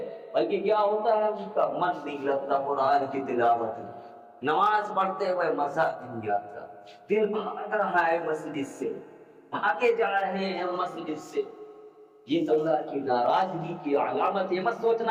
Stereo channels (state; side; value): identical; both; correlation 1.00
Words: بلکہ کیا ہوتا ہے اس کا من نہیں لگتا قرآن کی تلاوت میں، نماز پڑھتے ہوئے مزہ نہیں آتا، دل بھاگ رہا ہے مسجد سے، بھاگے جا رہے ہیں مسجد سے۔ یہ اللہ کی ناراضگی کی علامت ہے۔ مت